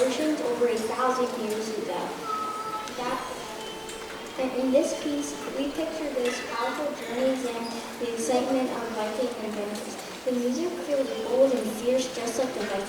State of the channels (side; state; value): both; identical; correlation 1.00